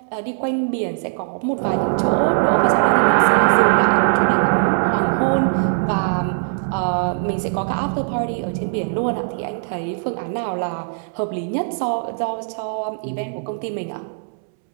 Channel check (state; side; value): silent; left; 66 dB below the other